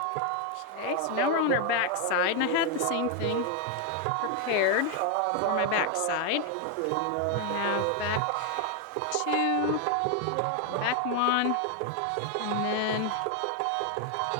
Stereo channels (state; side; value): different; both; correlation 0.01